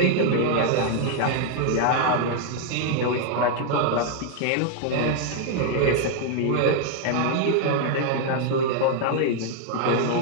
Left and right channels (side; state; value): both; different; correlation 0.00